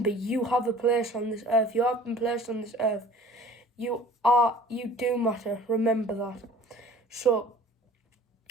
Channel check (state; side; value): normal; both; correlation 0.47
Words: you have a place on this earth. You have been placed on this earth. You do matter. Remember that. So,